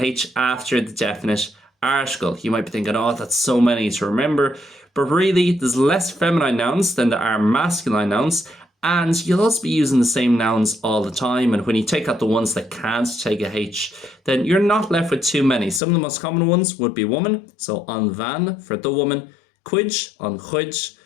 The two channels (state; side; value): drops out; right; at 15.8 s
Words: H after the definite article. You might be thinking, oh, that's so many to remember. But really, there's less feminine nouns than there are masculine nouns. And you'll also be using the same nouns all the time. And when you take out the ones that can't take a H, then you're not left with too many. Some of the most common ones would be woman. So an bhean for the woman. Cuid, an chuid